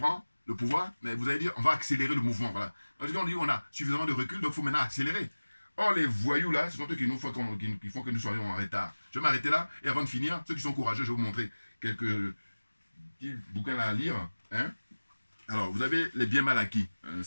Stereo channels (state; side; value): inverted; both; correlation -1.00